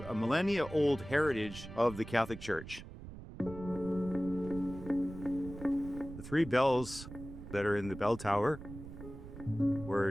a millennia-old heritage of the Catholic Church. The 3 bells that are in the bell tower were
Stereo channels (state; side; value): noise; right; rumble, 13 dB below the sound